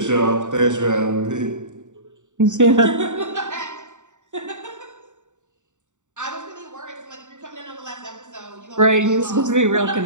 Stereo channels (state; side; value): late; left; 0.85 ms